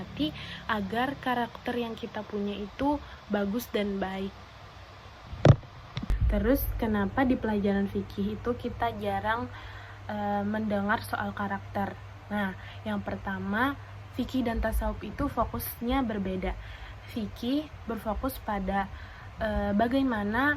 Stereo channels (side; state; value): both; identical; correlation 1.00